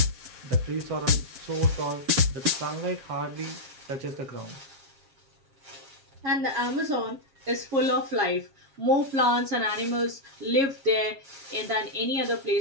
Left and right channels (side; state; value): left; late; 7.4 ms